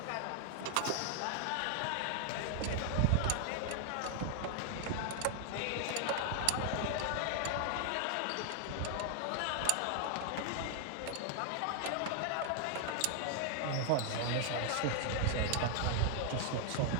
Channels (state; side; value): different; both; correlation 0.00